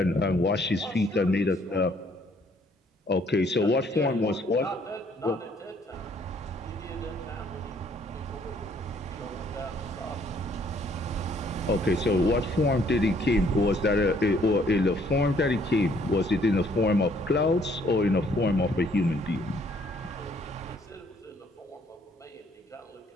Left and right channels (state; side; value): normal; both; correlation 0.64